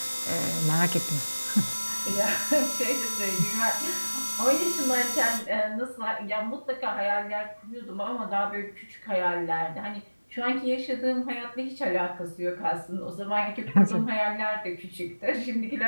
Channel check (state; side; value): inverted; both; correlation -1.00